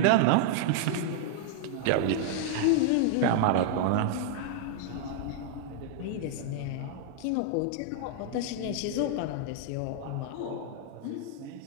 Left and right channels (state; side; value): different; both; correlation -0.01